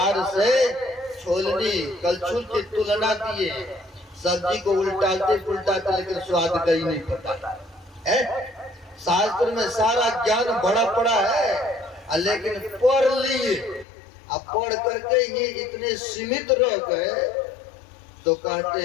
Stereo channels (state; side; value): drops out; right; at 13.9 s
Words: से छोलनी कलछुल की तुलना दिए, सब्जी को उल्टाते पुलटाते लेकिन स्वाद का ही नहीं पता है। शास्त्र में सारा ज्ञान बड़ा पड़ा है, लेकिन पढ़ लिए, अब पढ़ करके ये इतने सीमित रह गए, तो कहते